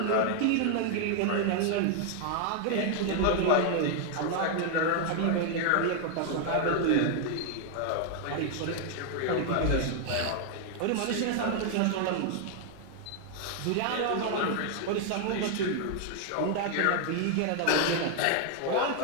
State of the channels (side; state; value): both; different; correlation 0.00